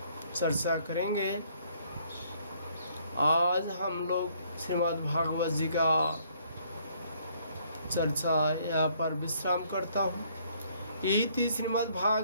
चर्चा करेंगे। आज हम लोग श्रीमद् भागवत जी का चर्चा यहाँ पर विश्राम करता हूँ। इति श्रीमद्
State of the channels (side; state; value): both; inverted; correlation -0.65